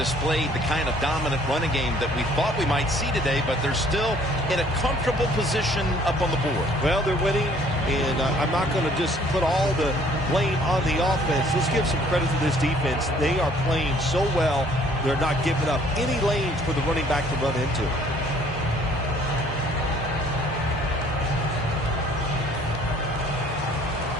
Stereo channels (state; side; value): normal; both; correlation 0.58